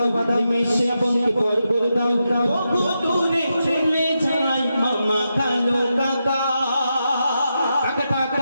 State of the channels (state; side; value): inverted; both; correlation -0.86